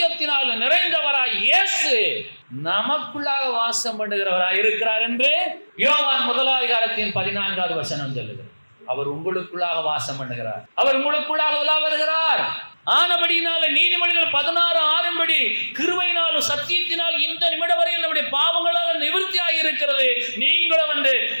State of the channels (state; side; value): inverted; both; correlation -1.00